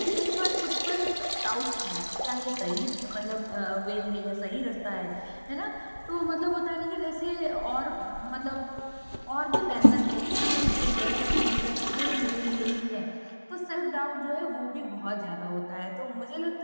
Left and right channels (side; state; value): both; inverted; correlation -1.00